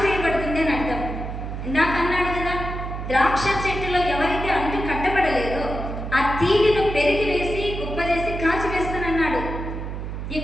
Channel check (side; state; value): right; noise; hum, 6 dB below the sound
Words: అని అర్థం. ఇందాక అన్నాడు కదా, ద్రాక్ష చెట్టులో ఎవరైతే అంటు కట్టబడలేదో ఆ తీగను పెరిగి వేసి కుప్ప చేసి కాల్చివేస్తానన్నాడు.